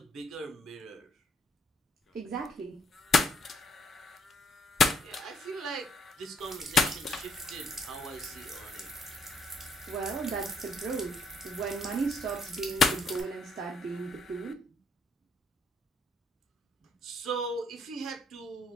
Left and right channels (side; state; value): both; normal; correlation 0.69